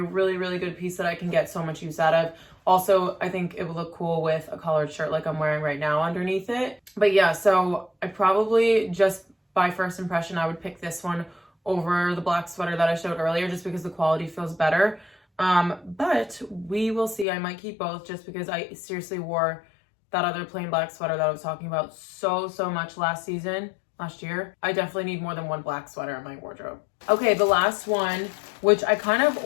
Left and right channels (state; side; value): drops out; right; at 17.2 s